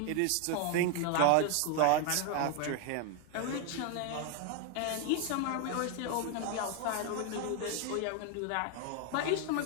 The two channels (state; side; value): different; both; correlation 0.01